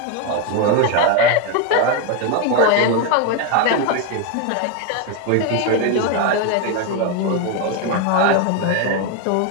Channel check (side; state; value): both; different; correlation 0.02